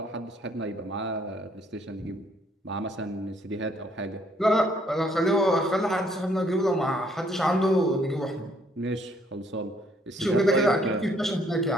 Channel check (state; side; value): normal; both; correlation 0.66